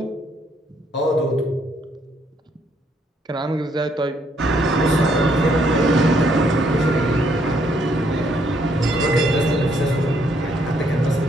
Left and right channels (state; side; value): normal; both; correlation 0.70